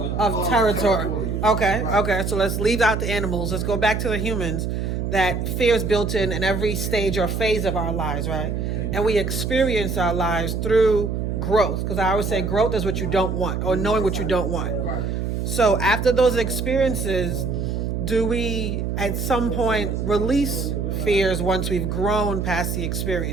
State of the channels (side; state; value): right; noise; hum, 2 dB below the sound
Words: Of territory. Okay. So let's leave out the animals. Let's go back to the humans. That fear is built in every stage or phase of our lives, right? And we experience our lives through growth. Because I always say growth is what you don't want, or knowing what you don't want. So after those experiences, do we at some point release fears once we've grown past the